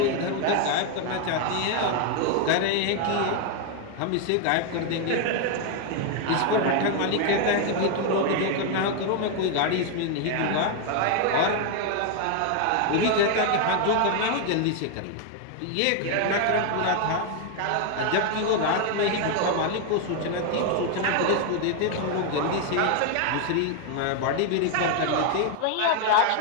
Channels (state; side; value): different; both; correlation 0.00